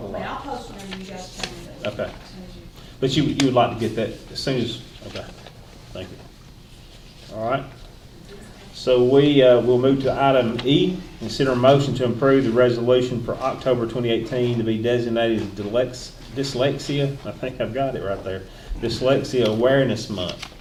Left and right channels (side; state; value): both; identical; correlation 1.00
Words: a lot. I'll post whenever you guys tell me that. Okay. As soon as you. But you would like to get that as soon as, okay, thank you. All right. So we'll move to item E, consider a motion to approve the resolution for October 2018 to be designated dyslexia, I think I've got it right there, Dyslexia Awareness Month.